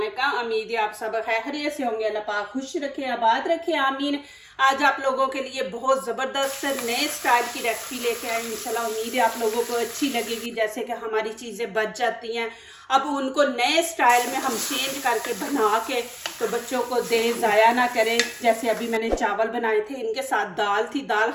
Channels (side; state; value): both; identical; correlation 1.00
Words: उम्मीद है आप सब खैरियत से होंगे। अल्लाह पाक खुश रखे, आबाद रखे, आमीन। आज आप लोगों के लिए बहुत ज़बरदस्त नए स्टाइल की रेसिपी लेके आए। इंशाल्लाह उम्मीद है आप लोगों को अच्छी लगेगी। जैसे कि हमारी चीज़ें बच जाती हैं, अब उनको नए स्टाइल में हम चेंज करके बना के तो बच्चों को दें, ज़ाया ना करें। जैसे अभी मैंने चावल बनाए थे, इनके साथ दाल थी, दाल